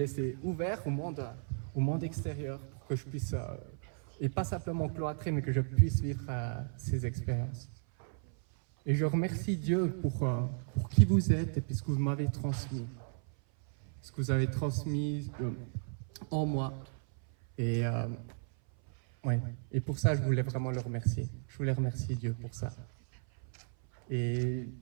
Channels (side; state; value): left; silent; 55 dB below the other